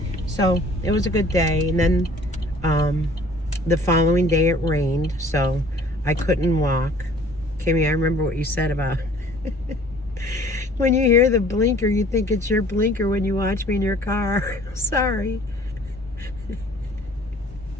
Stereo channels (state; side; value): normal; both; correlation 0.53